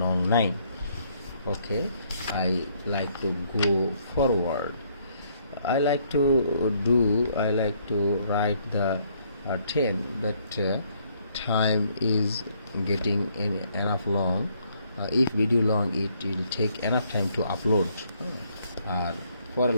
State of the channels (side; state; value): both; inverted; correlation -0.68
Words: নং 9. Okay, I like to go forward. I like to write the 10, but time is getting enough long. If video long, it will take enough time to upload. For a